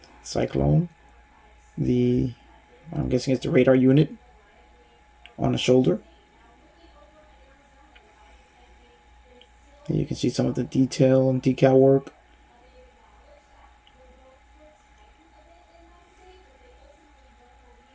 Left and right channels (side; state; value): both; identical; correlation 1.00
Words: Cyclone, the I'm guessing it's the radar unit on the shoulder. And you can see some of the detail and decal work.